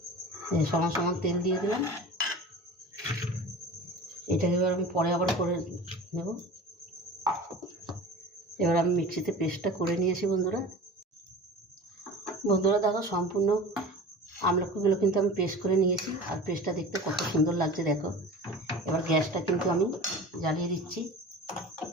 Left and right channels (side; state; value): both; normal; correlation 0.36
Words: সমান তেল দিয়ে দিলাম। এটাকে এবার আমি পরে আবার করে নেব। এবার আমি মিক্সিতে পেস্টটা করে নিয়েছি। বন্ধুরা দেখো, সম্পূর্ণ আমলকিগুলো কিন্তু আমি পেস্ট করে নিয়েছি। আর পেস্টটা দেখতে কত সুন্দর লাগছে দেখো। এবার গ্যাসটা কিন্তু আমি জ্বালিয়ে দিচ্ছি।